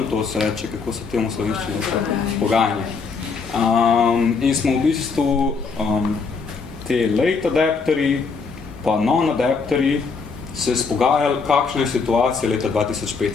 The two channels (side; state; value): right; quieter; 4.9 dB